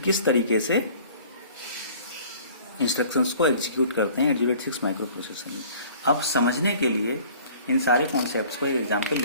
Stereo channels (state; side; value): inverted; both; correlation -0.50